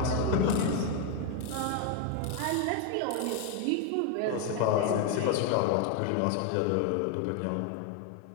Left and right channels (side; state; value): both; different; correlation 0.01